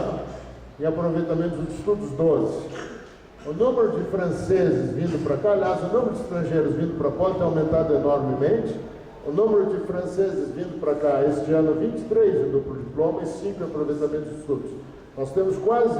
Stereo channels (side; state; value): both; identical; correlation 1.00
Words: em aproveitamento dos estudos 12. O número de franceses vindo para cá, aliás, o número de estrangeiros vindo para a Poli tem aumentado enormemente. O número de franceses vindo para cá, este ano, 23 em duplo diploma e 5 em aproveitamento de estudos. Nós temos quase